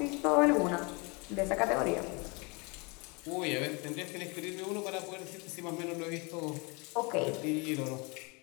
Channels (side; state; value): right; quieter; 29.9 dB